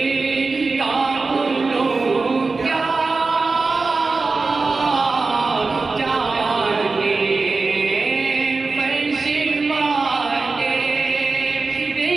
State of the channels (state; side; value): quieter; left; 3.9 dB